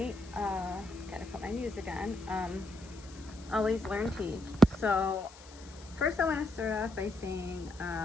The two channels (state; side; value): noise; left; hiss, 21 dB below the sound